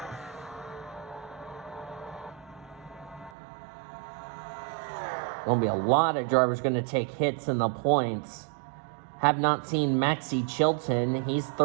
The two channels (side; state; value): left; drops out; at 3.3 s